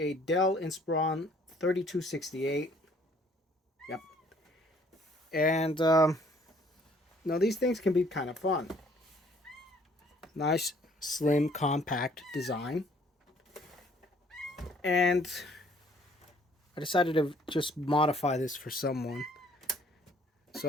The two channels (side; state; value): both; normal; correlation 0.60